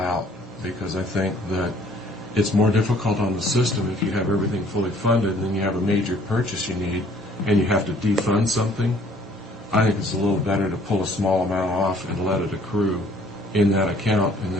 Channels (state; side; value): normal; both; correlation 0.58